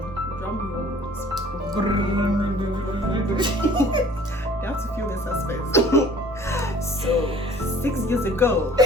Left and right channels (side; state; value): both; normal; correlation 0.51